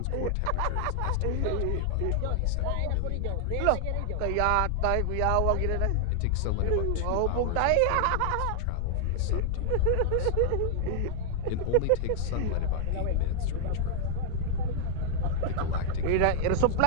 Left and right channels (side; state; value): both; different; correlation 0.00